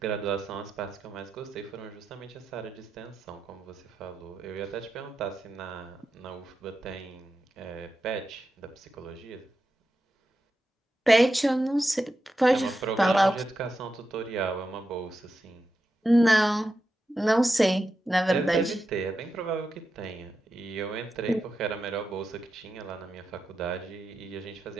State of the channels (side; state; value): both; normal; correlation 0.89